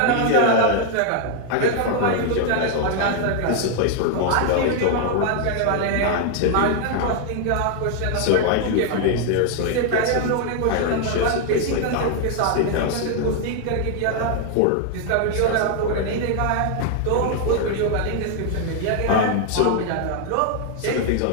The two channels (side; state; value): both; different; correlation 0.00